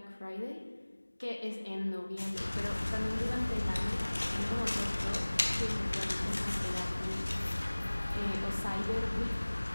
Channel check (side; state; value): both; inverted; correlation -1.00